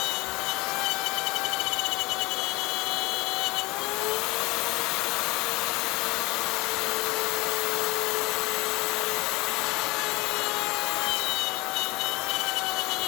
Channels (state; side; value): quieter; right; 23.2 dB